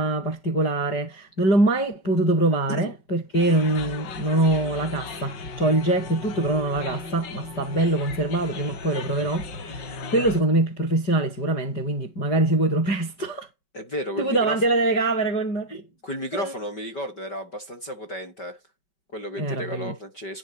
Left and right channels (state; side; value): late; right; 5.3 ms